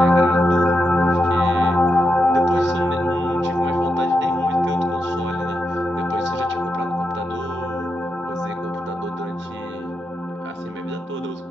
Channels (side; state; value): both; normal; correlation 0.85